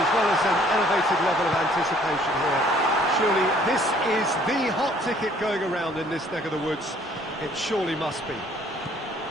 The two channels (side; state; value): both; normal; correlation 0.59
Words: well as an elevated level of anticipation here. Surely this is the hot ticket going around in this neck of the woods. It surely must be.